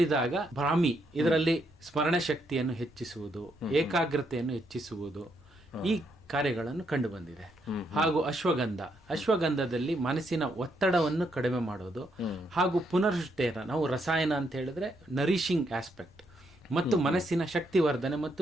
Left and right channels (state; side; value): normal; both; correlation 0.76